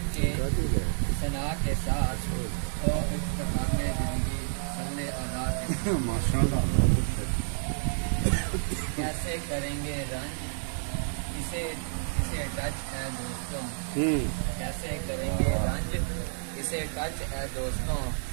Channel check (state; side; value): silent; left; 58 dB below the other